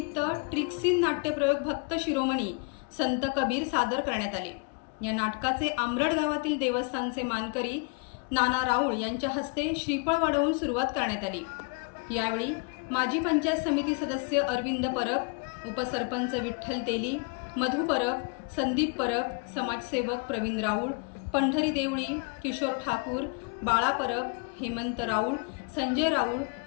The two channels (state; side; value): quieter; right; 32.4 dB